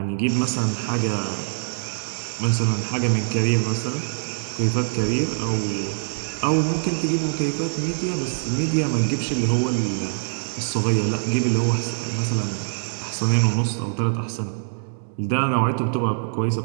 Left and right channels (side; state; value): left; silent; digital silence